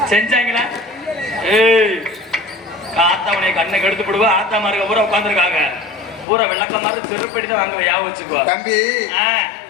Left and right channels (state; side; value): drops out; right; at 6.2 s